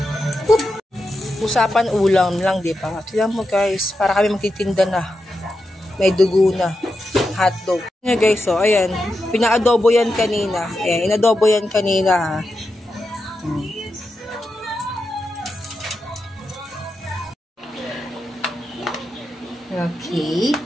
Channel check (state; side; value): normal; both; correlation 0.88